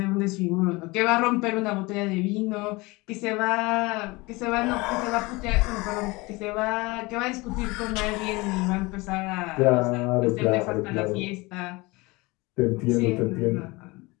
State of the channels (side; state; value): right; quieter; 23.6 dB